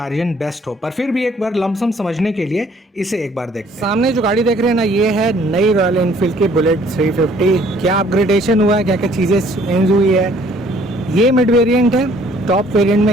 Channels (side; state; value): both; normal; correlation 0.59